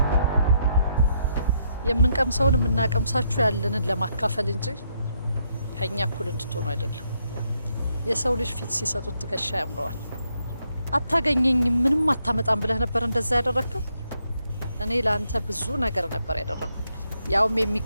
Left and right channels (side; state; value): both; inverted; correlation -0.76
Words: የምንቀምሰውን የምናቀምሳችሁ ያለንን ለማካፈል እንጂ ከኛ እኩል እንድትሆኑ አይደለም። የሰው ልጅ ፊት ሲሰጡት ትከሻ ያምረዋል። አታገኘኝም፣ ምንም አታመጣም ብለህ ነበር እንደዛ ያደረግከው። እኔ ለአንተ ብዙ ነገር ነበር ያደረኩት፣ ያውም